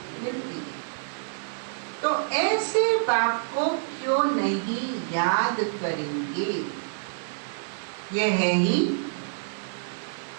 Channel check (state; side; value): silent; left; digital silence